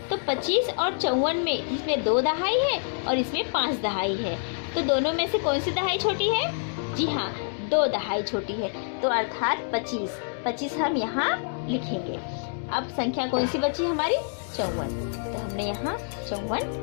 तो 25 और 54 में इसमें 2 दहाई है और इसमें 5 दहाई है। तो दोनों में से कौन सी दहाई छोटी है? जी हाँ, 2 दहाई छोटी है। तो अर्थात 25 हम यहाँ लिखेंगे। अब संख्या कौन सी बची हमारी? 54। तो हमने यहाँ 54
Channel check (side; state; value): right; silent; digital silence